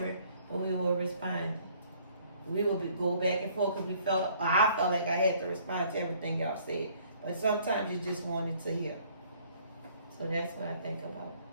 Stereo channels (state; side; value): inverted; both; correlation -0.60